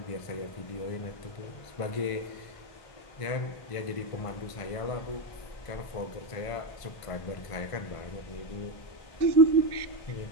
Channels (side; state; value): right; late; 1.5 ms